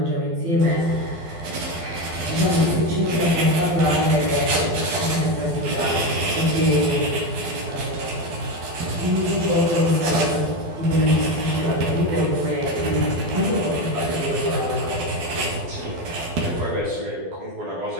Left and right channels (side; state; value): left; late; 12 ms